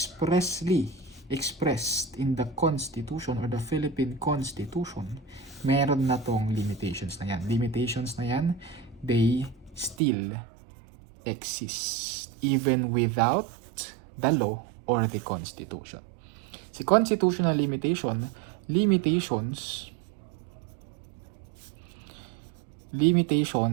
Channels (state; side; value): drops out; left; at 10.0 s